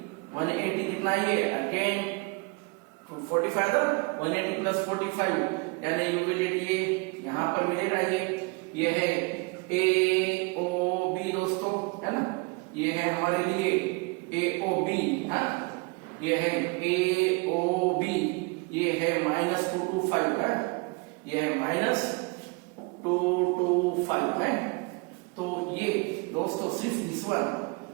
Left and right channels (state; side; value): quieter; left; 29.3 dB